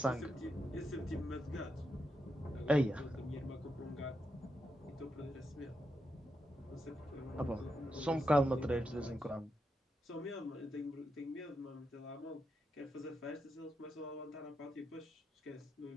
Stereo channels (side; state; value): both; normal; correlation 0.84